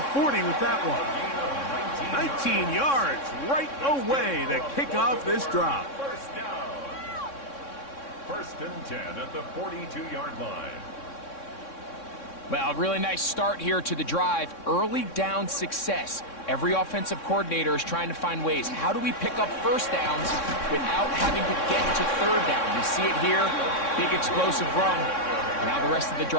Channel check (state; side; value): late; right; 3.6 ms